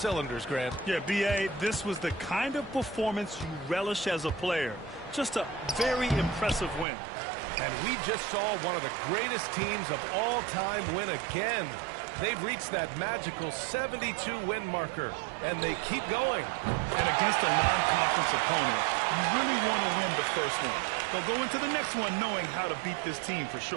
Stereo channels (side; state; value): left; drops out; at 6.9 s